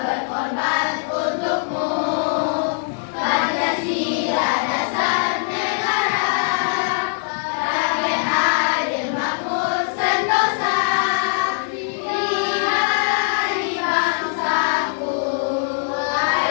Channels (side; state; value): right; silent; 65 dB below the other